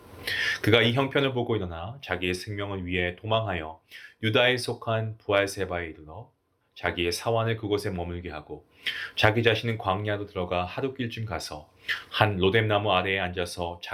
그가 이 형편을 보고 일어나 자기의 생명을 위해 도망하여 유다에 속한 부알세바에 이르러 자기의 사환을 그곳에 머물게 하고 자기 자신은 광야로 들어가 하룻길쯤 가서 한 로뎀나무 아래에 앉아서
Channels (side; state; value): both; identical; correlation 1.00